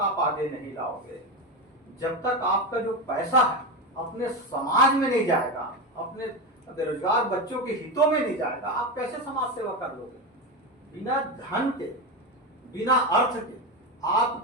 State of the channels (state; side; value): normal; both; correlation 0.16